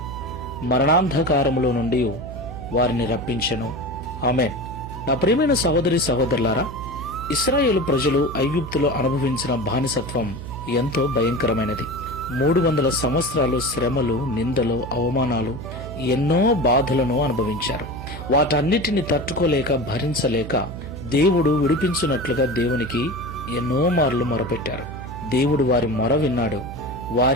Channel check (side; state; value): right; noise; hum, 10 dB below the sound